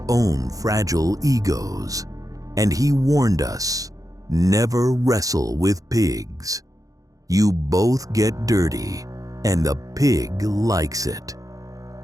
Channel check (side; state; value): left; late; 0.17 ms